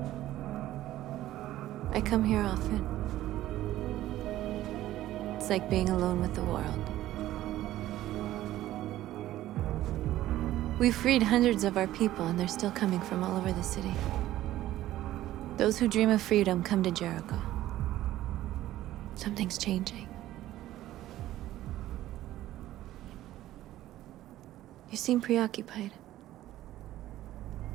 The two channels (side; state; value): left; quieter; 14.4 dB